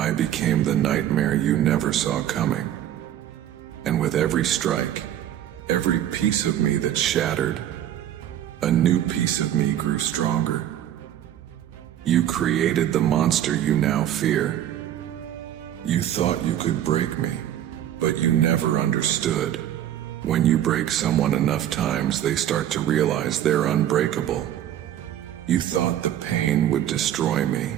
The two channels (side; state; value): left; quieter; 11.3 dB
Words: became the nightmare you never saw coming. And with every strike, every piece of me that shattered, a new piece of me grew stronger. You created the monster you now fear. You thought you could break me, but you never understood. When you break someone enough times, they start to realize they're unbreakable. You thought the pain would destroy me.